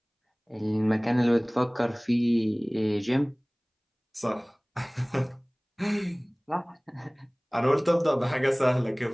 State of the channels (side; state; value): both; identical; correlation 1.00